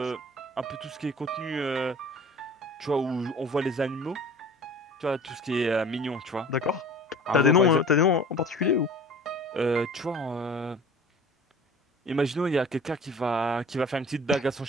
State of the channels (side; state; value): both; normal; correlation 0.43